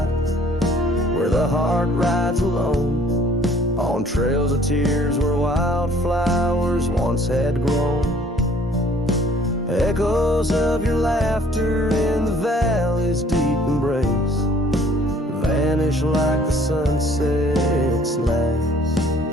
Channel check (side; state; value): both; normal; correlation 0.57